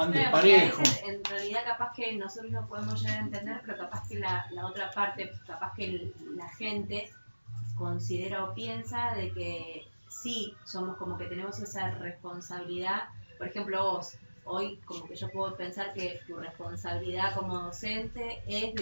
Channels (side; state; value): both; inverted; correlation -1.00